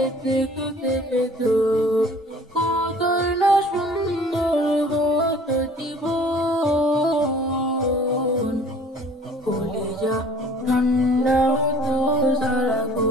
দেখতে পেত কতই না সুন্দর হতো জীবন কলিজা ঠান্ডা হতো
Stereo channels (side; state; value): both; normal; correlation 0.50